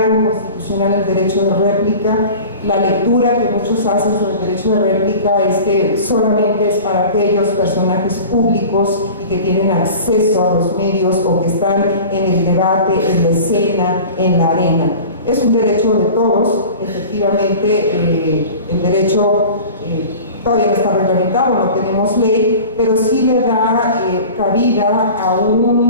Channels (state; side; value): inverted; both; correlation -0.39